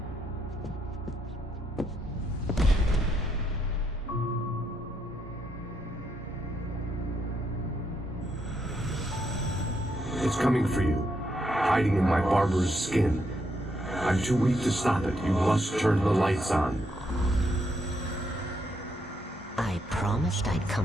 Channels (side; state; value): both; normal; correlation 0.77